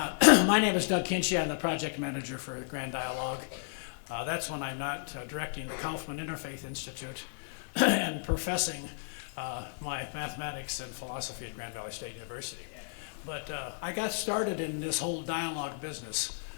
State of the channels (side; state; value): right; silent; digital silence